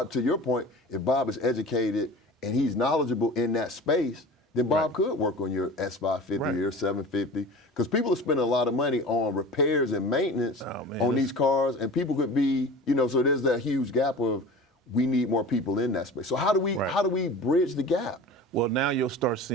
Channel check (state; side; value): normal; both; correlation 0.37